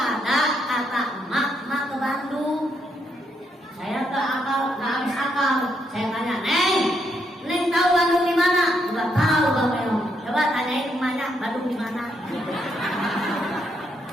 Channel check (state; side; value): normal; both; correlation 0.77